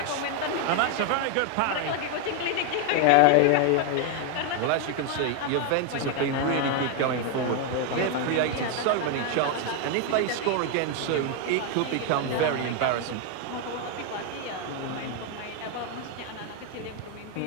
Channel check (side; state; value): both; different; correlation 0.01